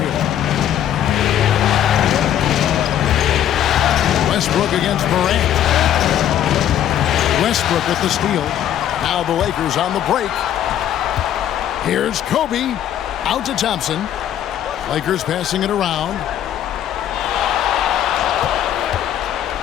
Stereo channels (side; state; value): right; quieter; 10.8 dB